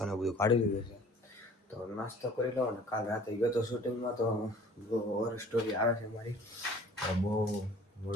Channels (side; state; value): both; normal; correlation 0.49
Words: ને બધું કાઢી લીધું છે. તો નાસ્તો કરી લો ને કાલ રાતે ગયો તો શૂટિંગમાં તો બહુ ઓવર સ્ટોરી આવે છે મારી, તો બહુ